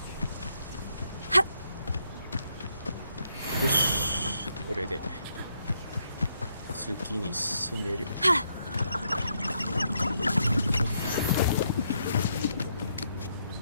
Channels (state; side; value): inverted; both; correlation -0.76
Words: よし、これで次に進める。